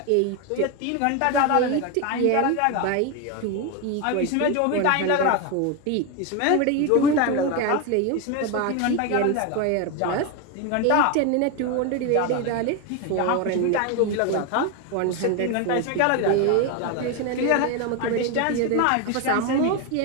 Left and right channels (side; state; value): both; different; correlation 0.02